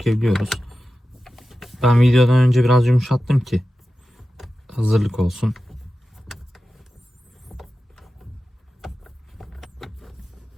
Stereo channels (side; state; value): both; normal; correlation 0.93